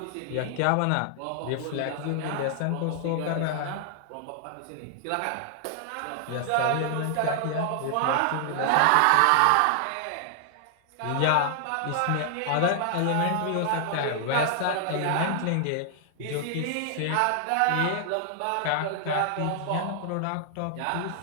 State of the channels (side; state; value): both; different; correlation 0.00